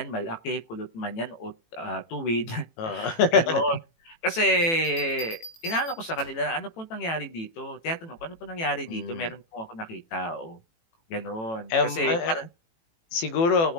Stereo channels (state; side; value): late; right; 18 ms